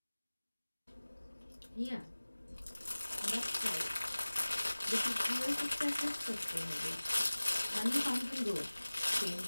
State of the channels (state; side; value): inverted; both; correlation -1.00